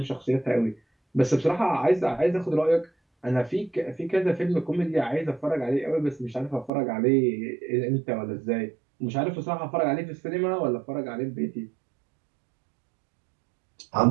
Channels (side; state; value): left; drops out; at 6.7 s